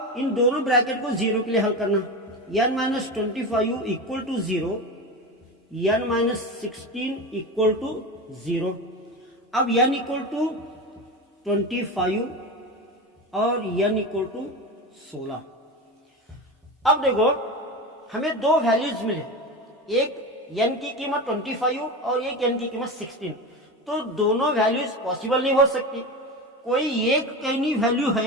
इन दोनों ब्रैकेट को 0 के लिए हल करना, n -25 equal to 0, n -16 equal to 0। अब n इक्वल टू 25 और n इक्वल टू 16। अब देखो हमें दो वैल्यूज मिले, एक n की कीमत 25 और एक n की कीमत 16। तो दोनों वैल्यूज पॉसिबल नहीं हो सकती, कोई एक कहीं वैल्यू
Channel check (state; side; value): normal; both; correlation 0.24